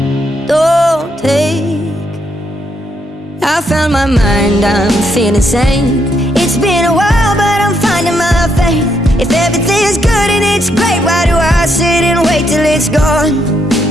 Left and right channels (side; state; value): both; normal; correlation 0.76